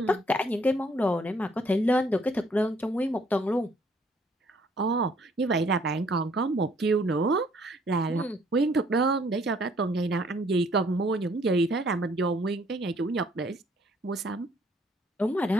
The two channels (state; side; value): normal; both; correlation 0.63